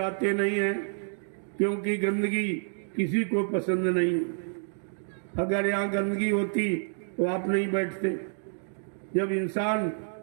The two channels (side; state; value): left; silent; digital silence